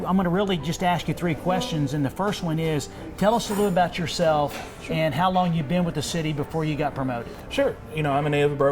going to really just ask you 3 questions, and the first one is, tell us a little about yourself and how long you've been with the city before you got promoted. Sure. You know, I'm a native of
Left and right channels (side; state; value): both; identical; correlation 1.00